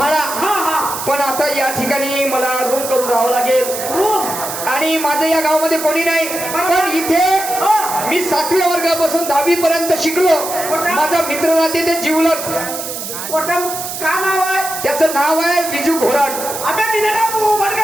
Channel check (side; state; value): right; noise; hiss, 7 dB below the sound